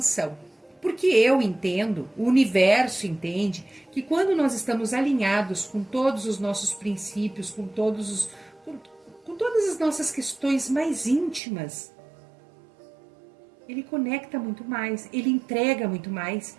Porque eu entendo, o universo entende, que quando nós estamos alinhados com todos os nossos princípios, com todas as nossas questões mais íntimas, ele conecta muito mais, ele entrega muito mais.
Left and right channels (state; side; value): drops out; left; at 11.4 s